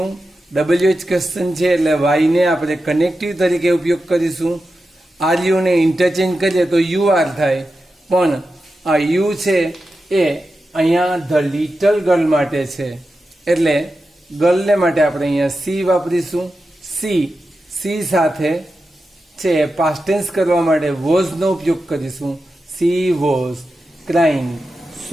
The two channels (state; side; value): normal; both; correlation 0.91